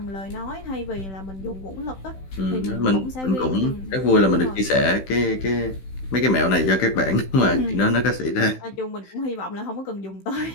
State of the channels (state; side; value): late; right; 16 ms